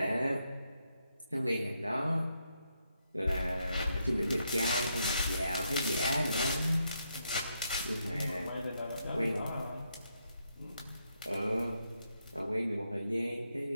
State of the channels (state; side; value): inverted; both; correlation -0.80